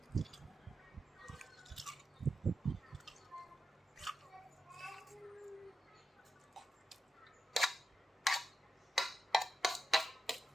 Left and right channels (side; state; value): both; normal; correlation 0.88